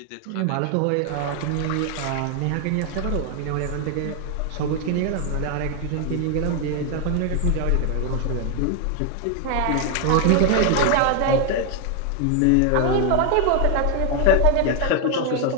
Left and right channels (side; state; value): both; different; correlation 0.01